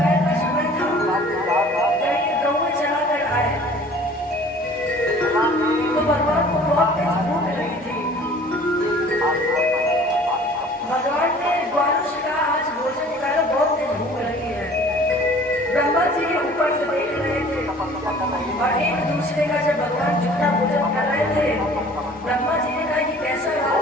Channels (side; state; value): both; normal; correlation 0.49